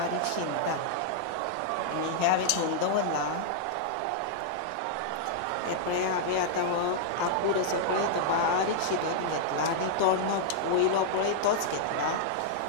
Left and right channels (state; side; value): different; both; correlation -0.02